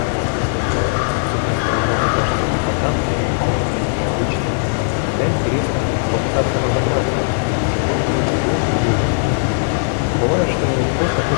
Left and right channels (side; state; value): right; silent; digital silence